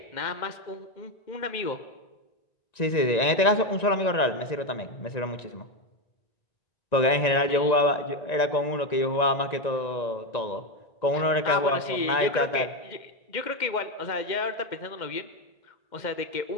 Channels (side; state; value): right; late; 1.9 ms